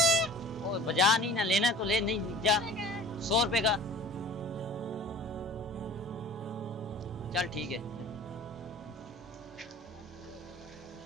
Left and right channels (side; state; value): both; normal; correlation 0.43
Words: ओ बजा नहीं ना, लेना तो ले, नहीं जा। 100 रुपए का। चल ठीक है।